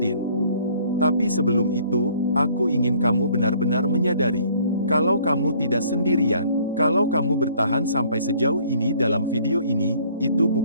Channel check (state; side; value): inverted; both; correlation -0.58